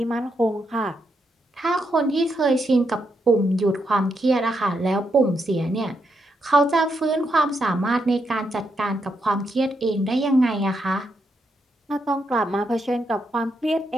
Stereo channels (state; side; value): normal; both; correlation 0.81